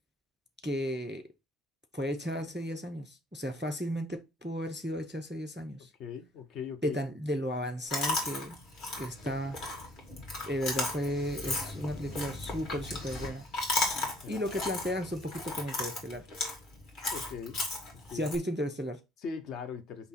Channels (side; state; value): both; normal; correlation 0.60